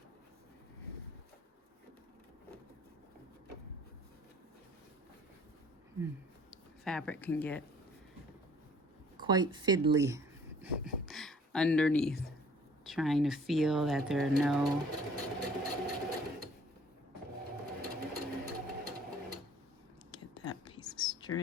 Fabric can get quite fiddly underneath. Trying to feel that there are no get that piece of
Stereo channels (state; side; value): normal; both; correlation 0.55